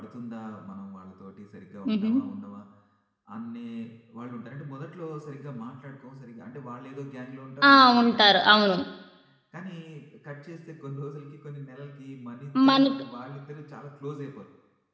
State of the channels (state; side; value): identical; both; correlation 1.00